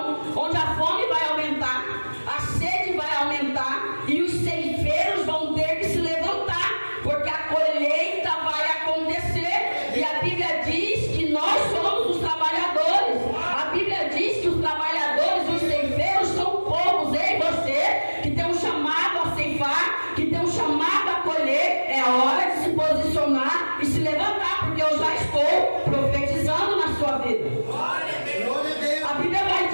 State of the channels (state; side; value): inverted; both; correlation -1.00